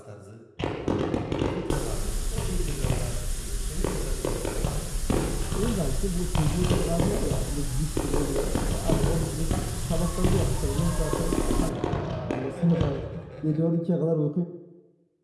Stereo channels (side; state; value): both; identical; correlation 1.00